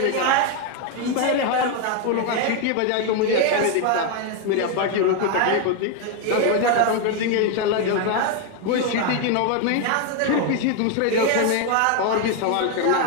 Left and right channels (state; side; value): different; both; correlation 0.01